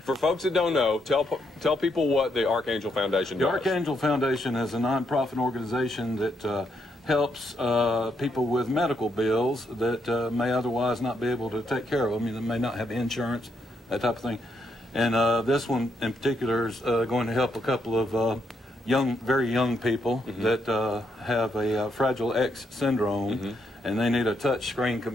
for folks that don't know, tell people what the Archangel Foundation does. The Archangel Foundation is a nonprofit organization that helps people with medical bills that may otherwise not be able to take care of them. I mean, they may not have insurance, that type of thing. And this one in particular is going to help a couple of very young people that have a Fragile X syndrome, and they need a touch screen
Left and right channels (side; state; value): both; normal; correlation 0.77